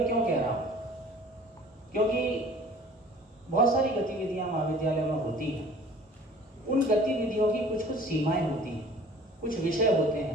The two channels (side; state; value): both; normal; correlation 0.48